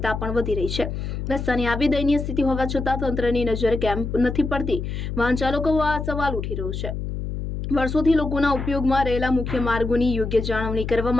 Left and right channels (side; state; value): left; noise; hum, 5 dB below the sound